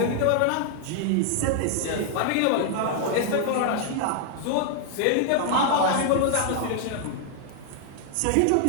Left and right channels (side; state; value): both; different; correlation 0.00